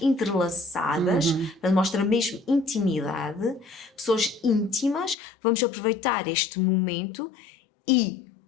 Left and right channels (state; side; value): drops out; right; at 5.2 s